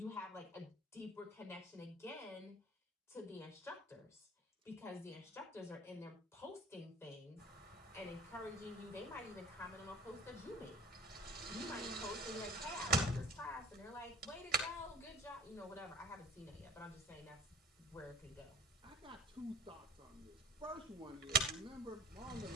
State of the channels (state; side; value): normal; both; correlation 0.45